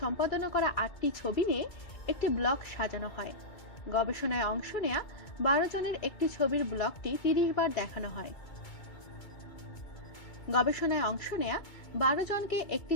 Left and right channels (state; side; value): late; right; 2.3 ms